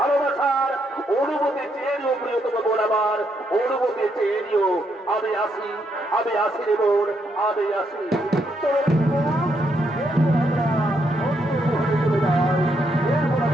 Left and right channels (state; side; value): normal; both; correlation 0.77